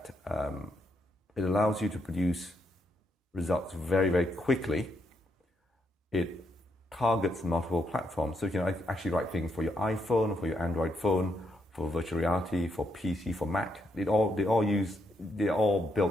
it allows you to produce results very, very quickly. It targets multiple platforms. So you can actually write things for your iPhone, for your Android phone, for virtual reality, for PC, for Mac. They're all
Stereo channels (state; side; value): normal; both; correlation 0.78